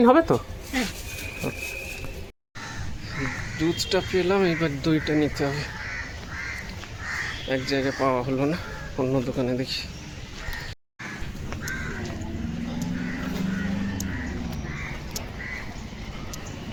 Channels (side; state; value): both; identical; correlation 1.00